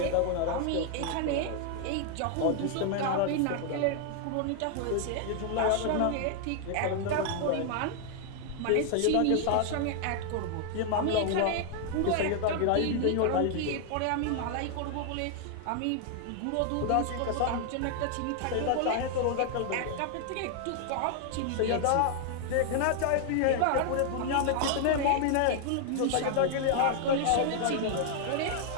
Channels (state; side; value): different; both; correlation 0.00